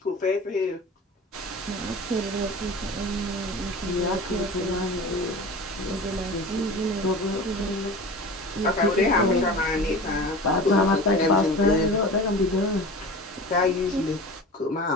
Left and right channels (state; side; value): normal; both; correlation 0.35